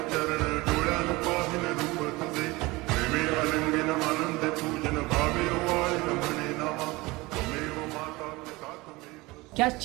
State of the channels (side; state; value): left; quieter; 22.1 dB